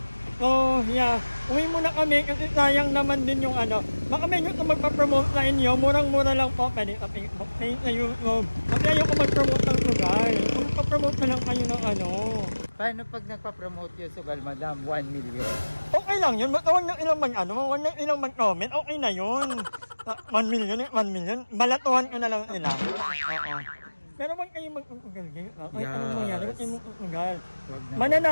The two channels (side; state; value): both; inverted; correlation -1.00